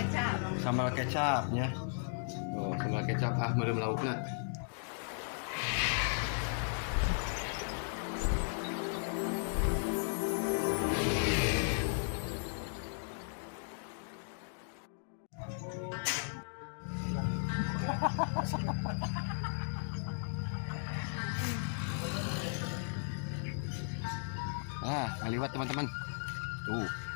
Sambal kecap nya. Oh, sambal kecap meureum laukna. Ngaliwat teman-teman. Tuh,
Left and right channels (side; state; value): right; silent; digital silence